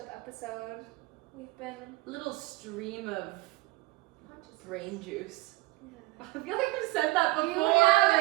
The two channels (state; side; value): quieter; left; 21.3 dB